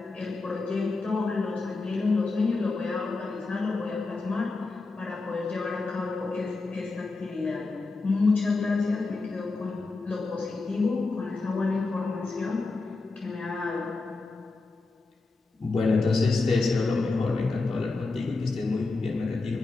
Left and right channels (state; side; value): quieter; right; 3.7 dB